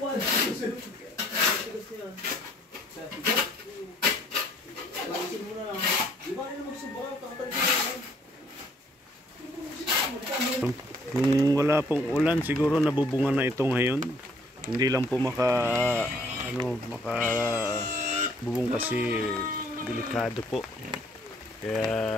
Kung wala pong ulan, siguro nabubunga na ito ngayon. Hindi lang po makabubong kasi delikado po. Kaya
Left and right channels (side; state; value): both; normal; correlation 0.62